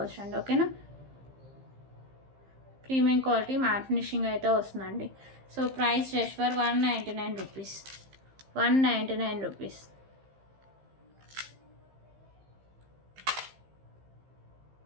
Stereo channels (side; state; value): left; late; 15 ms